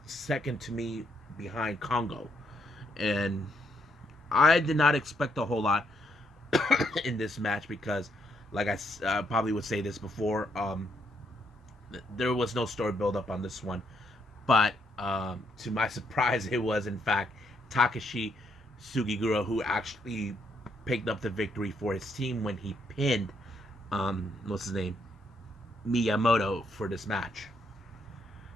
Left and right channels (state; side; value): normal; both; correlation 0.75